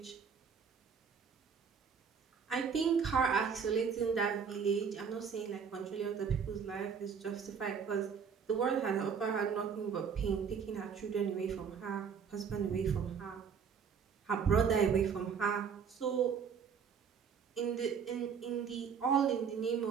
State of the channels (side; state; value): left; quieter; 6.6 dB